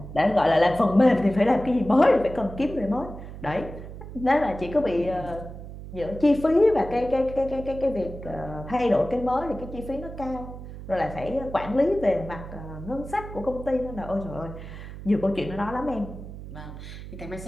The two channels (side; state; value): right; noise; hum, 12 dB below the sound